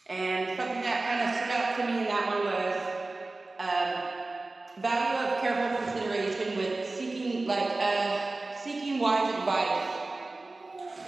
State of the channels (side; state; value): left; quieter; 3.2 dB